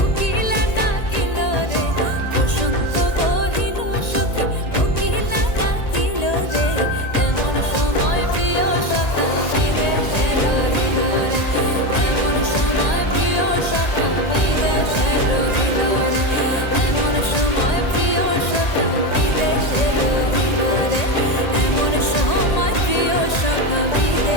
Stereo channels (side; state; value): right; late; 1.8 ms